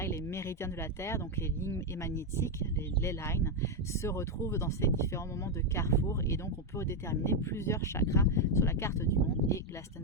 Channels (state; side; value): normal; both; correlation 0.04